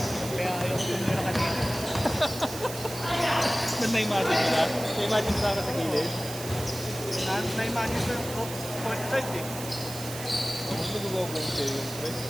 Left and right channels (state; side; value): noise; right; hiss, 10 dB below the sound